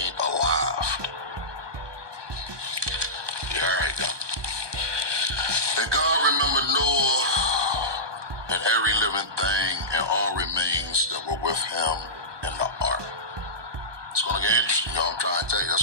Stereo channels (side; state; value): left; late; 1.2 ms